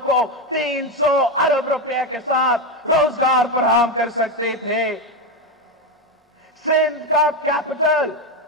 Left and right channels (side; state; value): both; normal; correlation 0.11